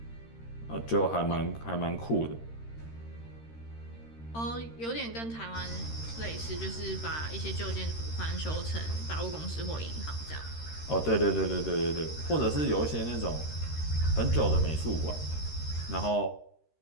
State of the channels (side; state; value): right; late; 13 ms